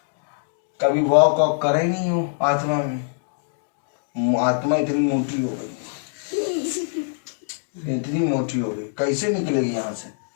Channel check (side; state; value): right; silent; digital silence